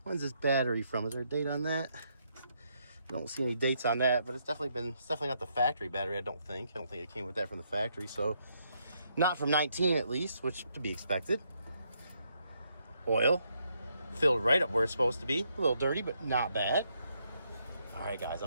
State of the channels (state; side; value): inverted; both; correlation -0.75